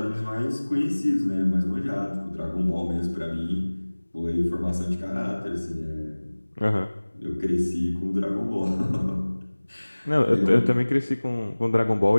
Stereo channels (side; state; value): both; inverted; correlation -1.00